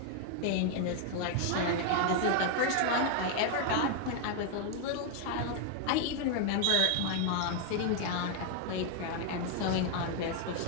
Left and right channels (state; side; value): different; both; correlation 0.00